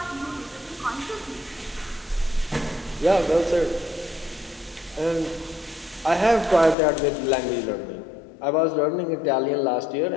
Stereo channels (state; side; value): drops out; right; at 6.8 s